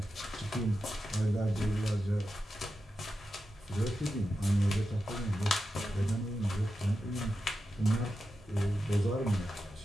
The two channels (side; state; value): both; normal; correlation 0.90